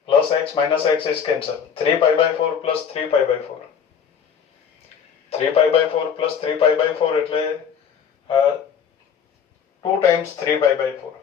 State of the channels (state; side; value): quieter; right; 7.4 dB